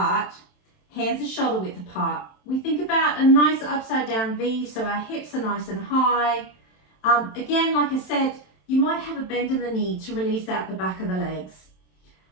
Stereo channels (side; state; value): right; late; 27 ms